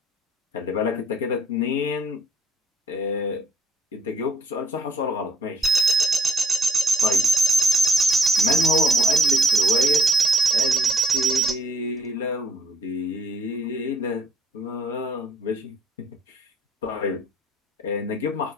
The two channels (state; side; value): normal; both; correlation 0.63